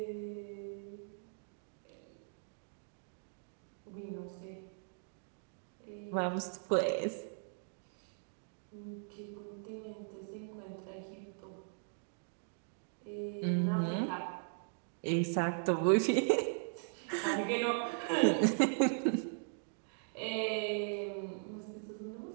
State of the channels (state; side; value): silent; left; digital silence